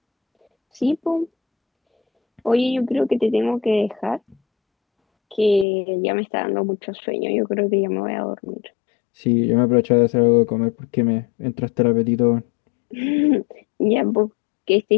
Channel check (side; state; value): right; drops out; at 5.7 s